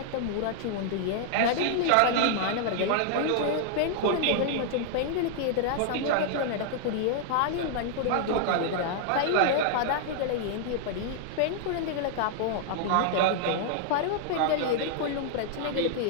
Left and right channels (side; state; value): both; different; correlation -0.01